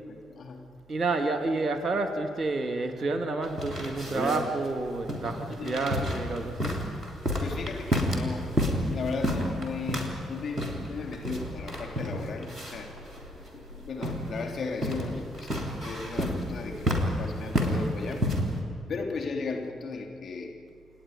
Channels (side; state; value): both; normal; correlation 0.67